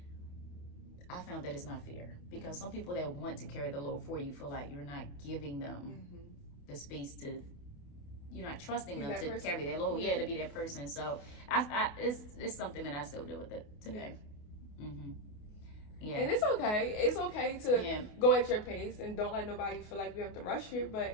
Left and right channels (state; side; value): late; right; 28 ms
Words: I found that it's not fair, because some people that want to carry the load for you feel like you're not giving them the space to, you're not trusting them to carry their load. To be that person. So it's something that I still deal with it today. Yeah. And it's okay. It's okay to go at your pace and don't let nobody feel like you have to rush you.